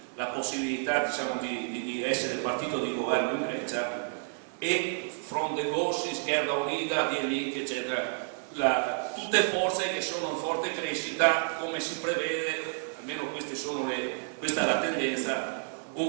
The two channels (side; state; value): left; silent; 58 dB below the other